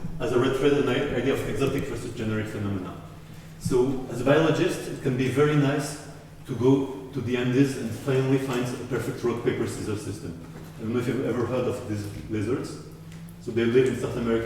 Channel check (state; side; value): identical; both; correlation 1.00